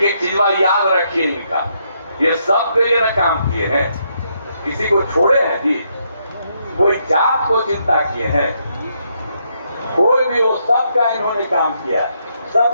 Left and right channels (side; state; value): both; inverted; correlation -0.76